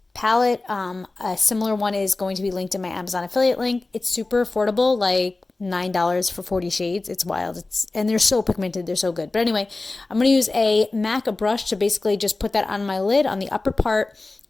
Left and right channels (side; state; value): right; quieter; 3.3 dB